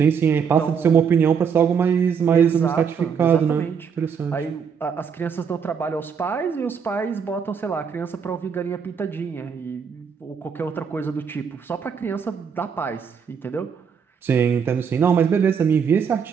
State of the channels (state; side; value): quieter; left; 6.7 dB